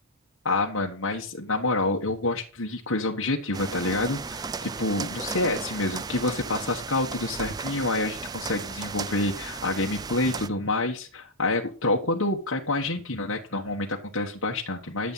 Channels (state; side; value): normal; both; correlation -0.04